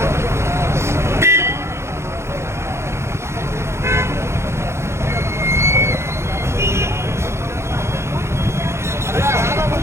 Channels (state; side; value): late; left; 0.13 ms